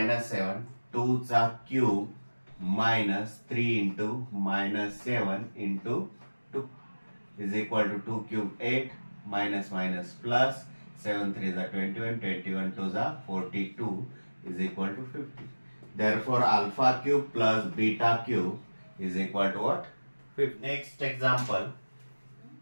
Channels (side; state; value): both; inverted; correlation -1.00